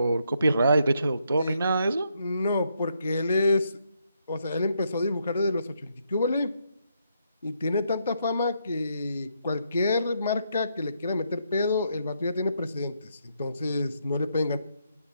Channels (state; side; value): inverted; both; correlation -0.77